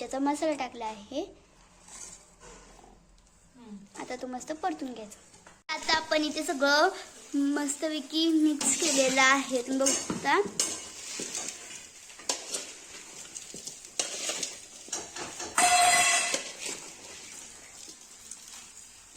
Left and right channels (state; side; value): identical; both; correlation 1.00